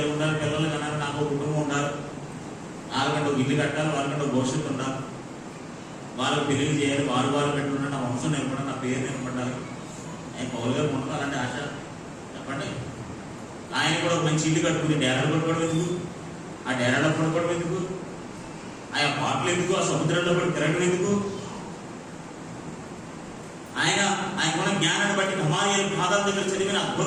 ఉండాలి, పిల్లలు కన్నారు, నాకు కుటుంబం ఉండాలి, వాళ్ళకంటే ఒక ఇల్లు కట్టాలి, వాళ్ళకంటే ఒక భవిష్యత్తు ఉండాలి, వాళ్ళకి పెళ్లి చేయాలి, వాళ్ళు పెట్టుకుంటే నా వంశం నిలబడాలి, నా పేరు నిలబడాలి. ఆయన పౌలు గారు ఉండదు అలాంటి ఆశ. చెప్పండి. ఆయన కూడా ఒక మంచి ఇల్లు కట్టుకుని డేరాలు పడుకోవడం ఎందుకు? ఆ డేరాలో పడుకోవడం ఎందుకు? ఆ పాటలు ఎందుకు? ఆ సముద్రంలో పడి తిరగడం ఎందుకు? ఆయనకున్న జ్ఞానాన్ని బట్టి, గమాలీయేలు పాదాల దగ్గర చదివిన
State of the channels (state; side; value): identical; both; correlation 1.00